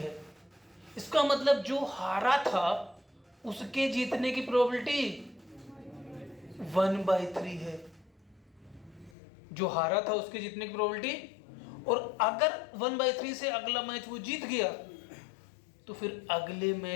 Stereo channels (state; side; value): drops out; right; at 9.2 s